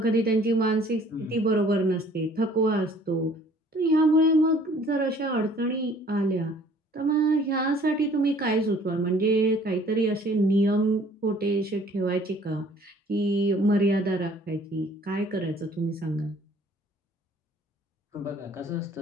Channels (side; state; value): both; normal; correlation 0.55